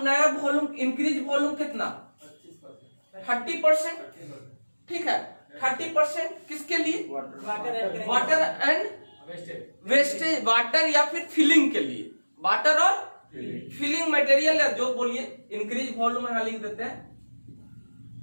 नया वॉल्यूम, इंक्रीज वॉल्यूम कितना? 30%। ठीक है, 30% किसके लिए? वाटर एंड वेस्टेज, वाटर या फिर फिलिंग के लिए, वाटर और फिलिंग मटेरियल या जो बोलिए। इंक्रीज वॉल्यूम यहां लिख देते हैं।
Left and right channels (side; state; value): both; inverted; correlation -1.00